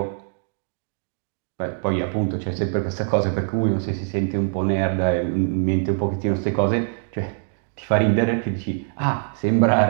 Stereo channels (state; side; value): silent; left; 63 dB below the other